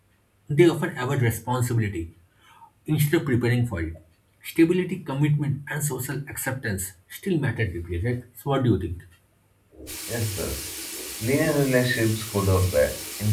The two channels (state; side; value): identical; both; correlation 1.00